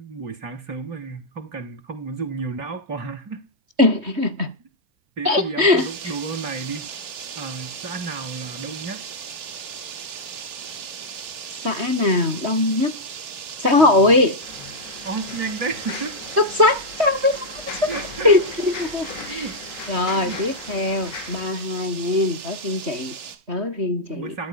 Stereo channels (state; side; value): late; left; 3.2 ms